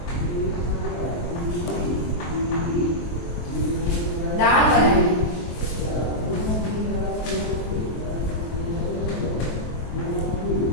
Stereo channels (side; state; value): right; late; 23 ms